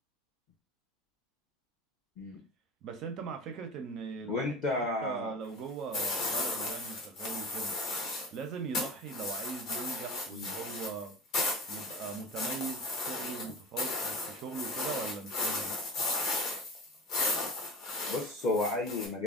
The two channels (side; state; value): both; normal; correlation 0.34